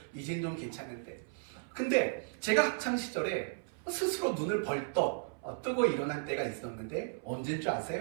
이젠 좀 괜찮은데. 근데 제가 학창 시절에 스스로 눈을 벌떡 뜨고 일어난 때가 있었는데 언제인 줄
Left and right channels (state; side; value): silent; left; 55 dB below the other